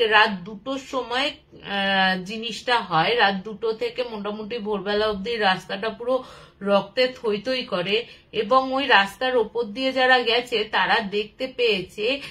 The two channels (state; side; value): identical; both; correlation 1.00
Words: রাত 2টোর সময় জিনিসটা হয়। রাত 2টো থেকে মোটামুটি ভোরবেলা অব্দি রাস্তাটা পুরো রক্তে থই থই করে, এবং ওই রাস্তার ওপর দিয়ে যারা গেছে তারা দেখতে পেয়েছে